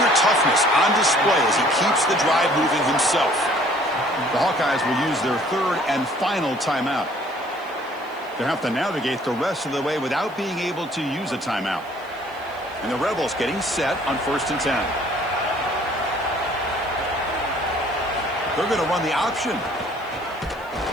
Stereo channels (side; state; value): right; noise; hiss, 28 dB below the sound